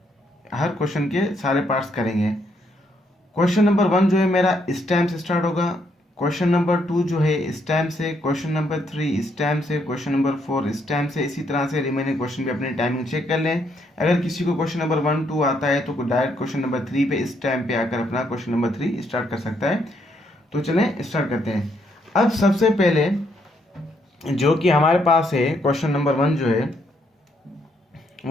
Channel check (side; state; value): both; normal; correlation 0.73